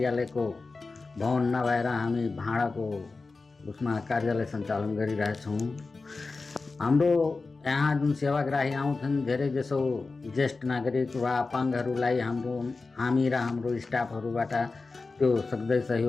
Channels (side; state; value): right; quieter; 3.9 dB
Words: भवन नभएर हामी भाडाको उसमा कार्यालय सञ्चालन गरिरहेछौँ। हाम्रो यहाँ जुन सेवाग्राही आउँछन्, धेरै जसो ज्येष्ठ नागरिक वा अपाङ्गहरूलाई हामी र हाम्रो स्टाफहरूबाट त्यो सक्दै